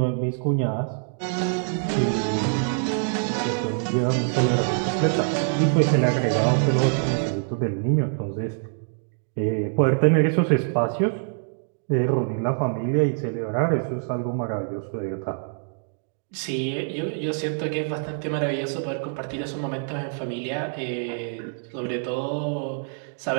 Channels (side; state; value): left; silent; 62 dB below the other